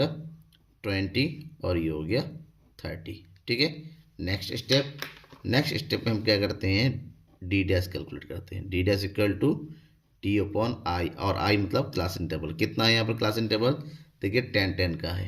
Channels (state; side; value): identical; both; correlation 1.00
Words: 20, और ये हो गया 30, ठीक है। नेक्स्ट स्टेप में हम क्या करते हैं, d' कैलकुलेट करते हैं। d' equal to t upon i, और i मतलब क्लास इंटरवल। कितना है यहाँ पर क्लास इंटरवल, देखिए 10 का